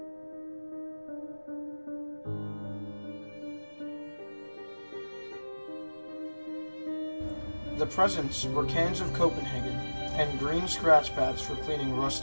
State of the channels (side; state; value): both; inverted; correlation -1.00